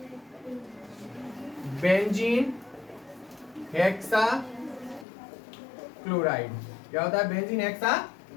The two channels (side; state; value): right; drops out; at 5.1 s